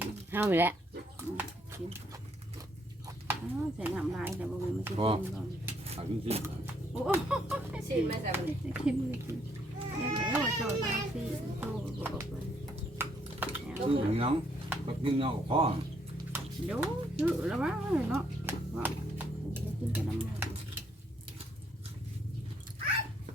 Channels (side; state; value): both; normal; correlation 0.70